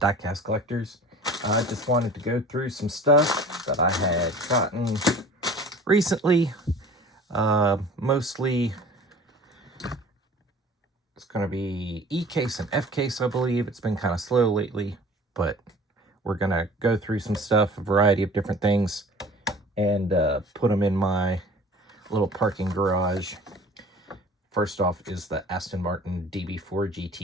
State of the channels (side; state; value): both; normal; correlation 0.45